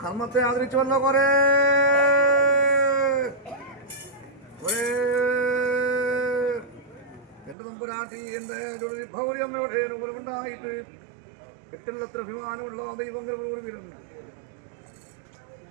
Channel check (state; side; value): drops out; left; at 7.6 s